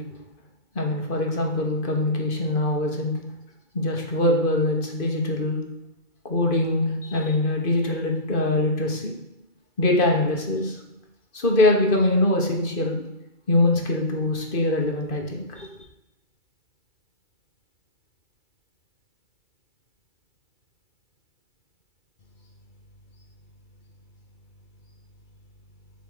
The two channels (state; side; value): late; right; 2.5 ms